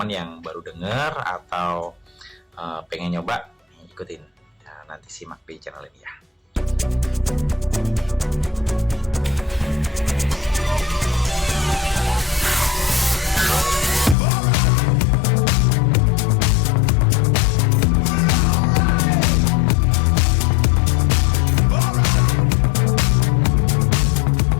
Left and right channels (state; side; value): drops out; right; at 14.2 s